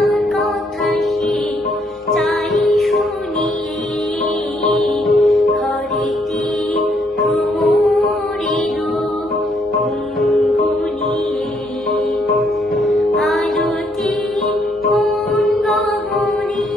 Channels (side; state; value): both; normal; correlation 0.71